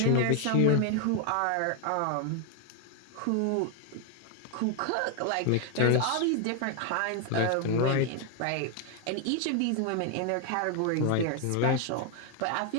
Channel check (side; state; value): both; different; correlation 0.01